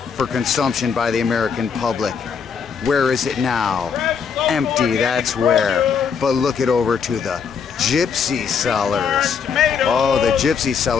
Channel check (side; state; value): right; quieter; 6.5 dB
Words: for consumption by the American public. Where is it now? Empty, that's where. But look it over to the Gypsy sellers. Oh, the Gypsy